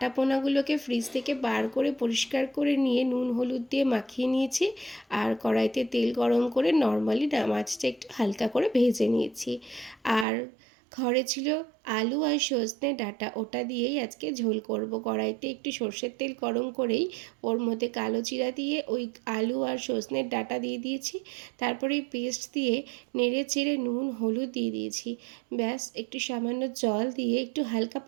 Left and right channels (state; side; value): drops out; left; at 10.2 s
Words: পোনাগুলোকে ফ্রিজ থেকে বার করে পরিষ্কার করে নিয়ে নুন হলুদ দিয়ে মাখিয়ে নিয়েছি। আর কড়াইতে তেল গরম করে নর্মালি মাছটা একটু হালকা করে ভেজে নিয়েছি। আর ঘরে ছিল আলু আর সজনে ডাঁটা, ওটা দিয়েই আজকে ঝোল করব। কড়াইতে একটু সর্ষের তেল গরম করেই ওর মধ্যে কালো জিরা দিয়ে ওই আলু আর সজনের ডাঁটা দিয়ে দিয়েছি। তারপরে এই পেস্ট দিয়ে নেড়ে চেড়ে নুন হলুদ দিয়ে দিয়েছি। ব্যাস, একটু সামান্য জল দিয়ে একটু হালকা